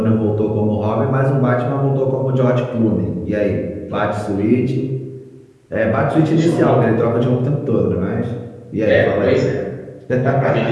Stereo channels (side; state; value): both; identical; correlation 1.00